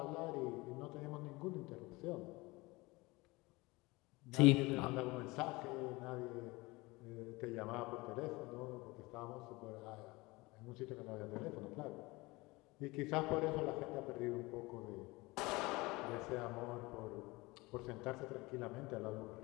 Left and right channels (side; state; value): right; quieter; 22.8 dB